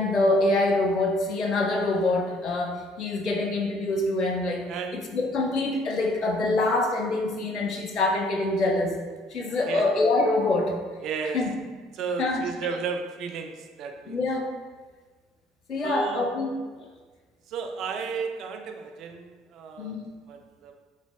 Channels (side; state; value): both; normal; correlation 0.61